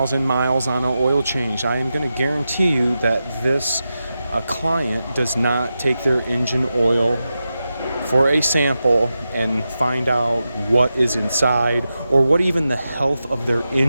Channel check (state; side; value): inverted; both; correlation -0.90